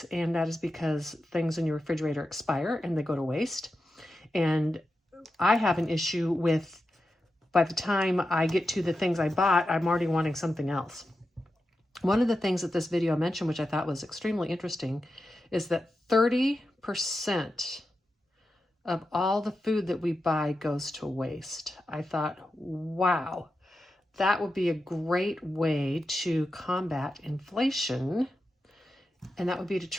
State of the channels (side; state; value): both; normal; correlation 0.90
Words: And that is because things in your refrigerator expire and they go to waste. And I have an issue with, by the time I get to the things I bought, I'm already wanting something else. One of the things that this video mentioned, which I thought was extremely interesting, is that 30% of all the food that we buy goes to waste. I thought, wow. That would be a great way to combat inflation, and that would be to